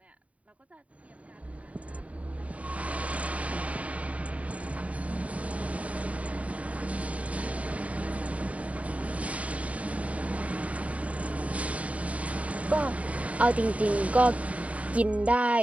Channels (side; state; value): left; late; 0.067 ms